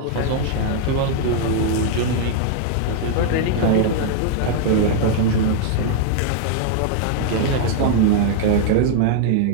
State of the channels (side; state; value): both; different; correlation 0.00